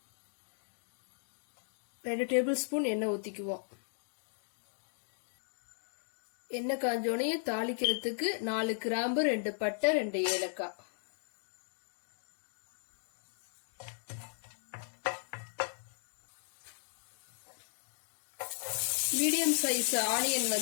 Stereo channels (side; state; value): right; silent; digital silence